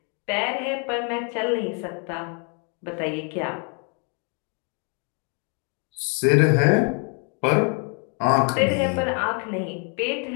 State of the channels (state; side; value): quieter; right; 38.2 dB